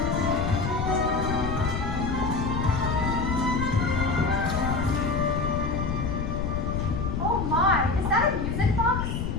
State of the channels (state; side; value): noise; left; rumble, 2 dB below the sound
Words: Oh my, is that a music box?